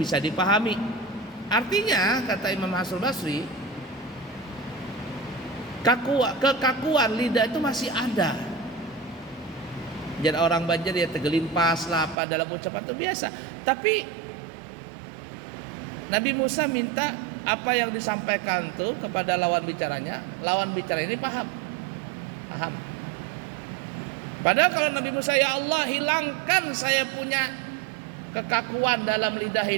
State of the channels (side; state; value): left; drops out; at 12.2 s